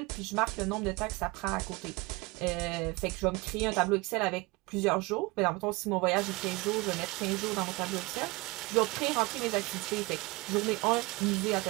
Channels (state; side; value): quieter; left; 24.0 dB